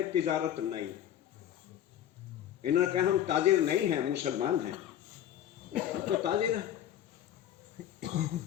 तिजारत नहीं। इन्होंने कहा हम ताजिर नहीं हैं, मुसलमान हैं। हम तो ताजिर हैं,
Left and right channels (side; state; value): right; quieter; 10.9 dB